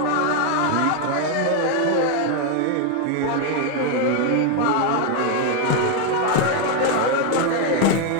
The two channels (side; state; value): both; different; correlation 0.01